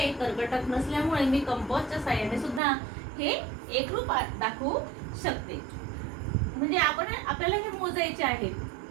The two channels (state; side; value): drops out; left; at 2.6 s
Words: कर्कटक नसल्यामुळे मी कंपासच्या साहाय्याने सुद्धा हे एकरूप दाखवू शकते. म्हणजे आपल्याला हे मोजायचे आहेत.